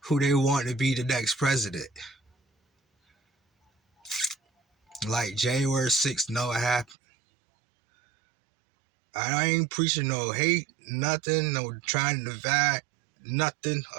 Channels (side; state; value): left; drops out; at 7.0 s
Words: they want to be the next president. Like January 6th never happened. I ain't preaching no hate, nothing, no trying to divide, nothing.